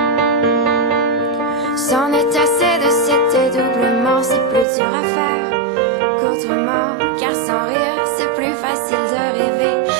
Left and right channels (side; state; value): left; drops out; at 4.7 s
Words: C'en est assez de cet dédoublement, c'est plus dur à faire qu'autrement. Car sans rire c'est plus facile de rêver